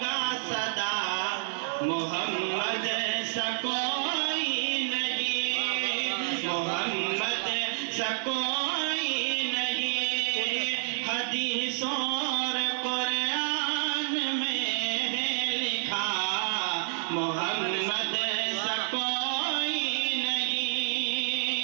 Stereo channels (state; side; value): silent; left; 59 dB below the other